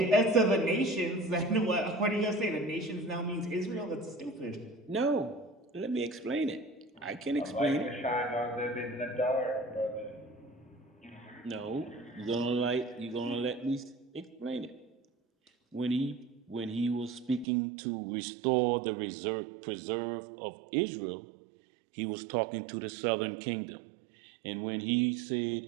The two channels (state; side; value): drops out; left; at 17.4 s